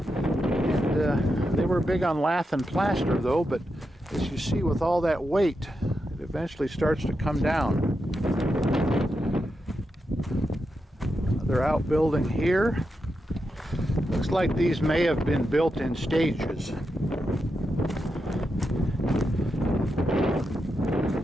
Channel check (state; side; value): normal; both; correlation 0.86